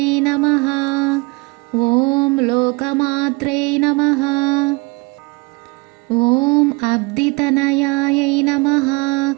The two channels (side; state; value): left; quieter; 28.1 dB